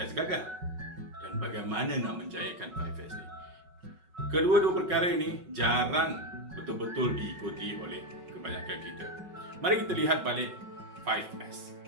gagal? Dan bagaimana nak menjayakan 5S ni? Kedua-dua perkara ini jarang betul-betul diikuti oleh kebanyakan kita. Mari kita lihat balik 5S.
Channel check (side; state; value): left; late; 5.4 ms